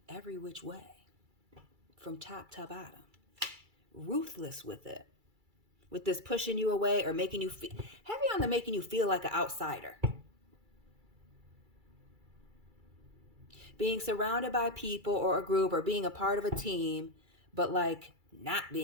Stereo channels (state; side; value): late; left; 2.3 ms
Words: every which way. From top to bottom. Ruthless with it. With this pushing you away or making you feel... Heavy on the making you feel like an outsider. Being surrounded by people or a group or being a part of a team, but like... not